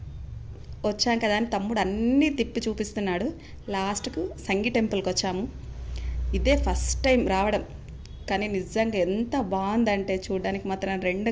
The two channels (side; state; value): both; identical; correlation 1.00